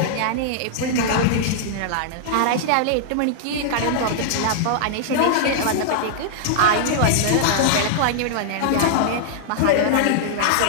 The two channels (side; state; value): both; different; correlation -0.01